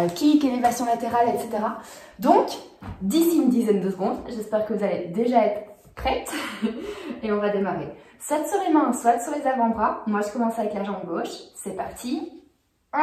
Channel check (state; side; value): identical; both; correlation 1.00